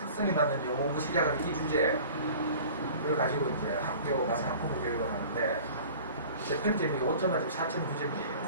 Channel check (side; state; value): both; inverted; correlation -0.43